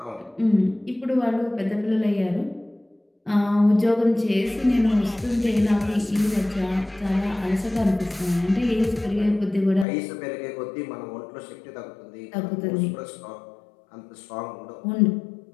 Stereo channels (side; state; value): right; drops out; at 9.9 s